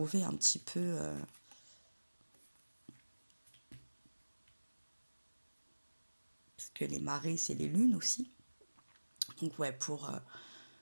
un petit peu... parce que les marées, c'est les lunes aussi. Donc ouais, pour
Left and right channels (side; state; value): both; inverted; correlation -1.00